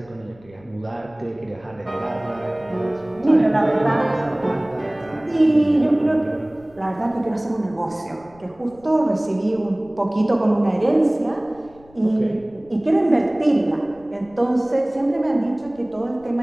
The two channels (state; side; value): noise; left; rumble, 26 dB below the sound